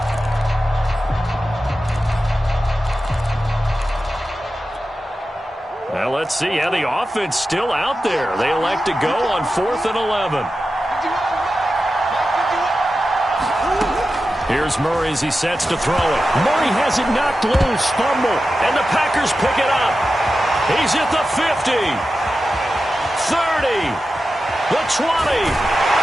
Well, let's see how the offense still out there. They elect to go on 4th and 11. Here's Murray as he sets to throw it. Murray has it knocked loose, fumble, and the Packers pick it up. He's at the 50, 30, the 20.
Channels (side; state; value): both; normal; correlation 0.92